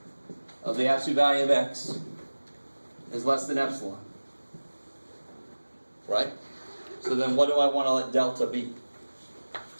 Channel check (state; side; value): inverted; both; correlation -1.00